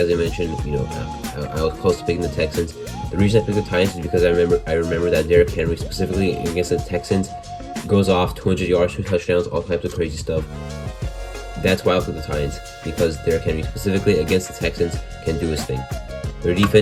I mentioned, I was close to picking the Texans. The reason I picked the Titans is because I remember that Derrick Henry, specifically against the Texans, goes off 200 yards, 2 touchdowns, all types of crazy stuff. That's why I picked the Titans, because Derrick Henry, specifically against the Texans, can do his thing. Their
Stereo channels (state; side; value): identical; both; correlation 1.00